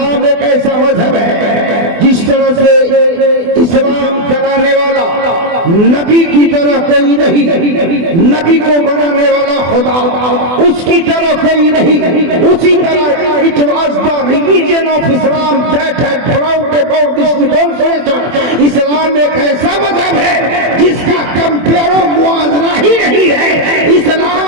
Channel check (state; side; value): late; left; 24 ms